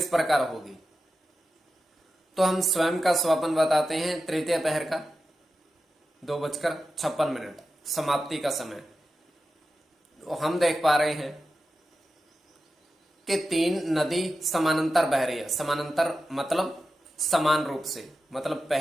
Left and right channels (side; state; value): both; normal; correlation 0.91